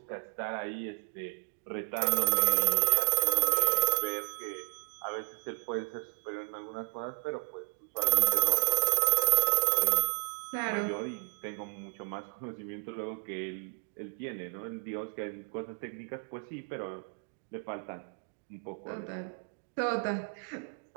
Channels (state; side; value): silent; left; 56 dB below the other